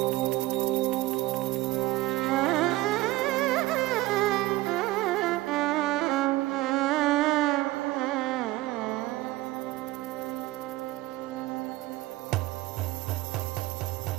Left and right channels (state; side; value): quieter; left; 18.6 dB